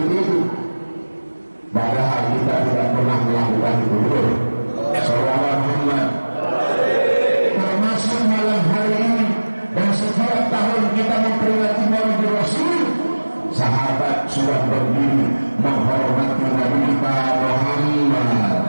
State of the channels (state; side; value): inverted; both; correlation -1.00